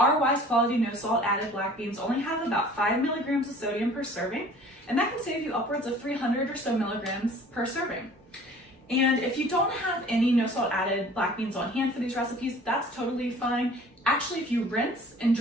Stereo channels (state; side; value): normal; both; correlation 0.49